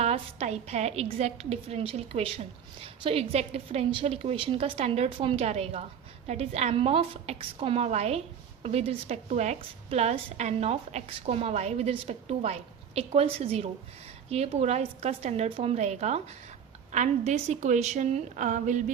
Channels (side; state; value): left; quieter; 7.9 dB